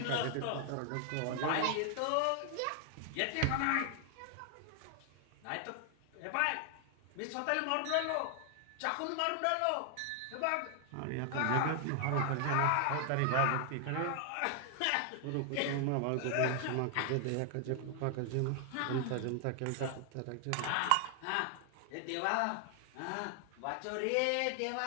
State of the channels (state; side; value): different; both; correlation 0.00